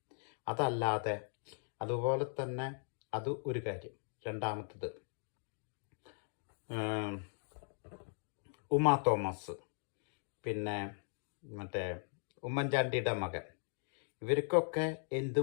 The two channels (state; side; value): silent; right; digital silence